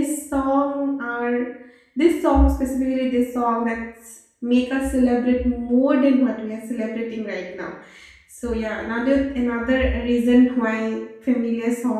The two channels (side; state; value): both; identical; correlation 1.00